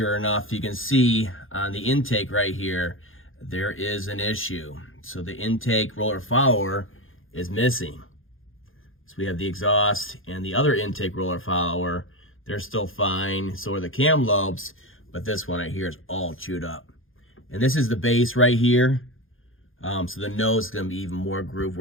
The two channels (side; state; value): right; late; 0.59 ms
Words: enough, you can see on the intake right here, there is an issue. So the intake roller follower is missing. So we have the exhaust and the other intake roller follower. They're still fine. So are the cam lobes, but this one right here is all chewed up. And this is the base right here. So the nose is going to be even more grooved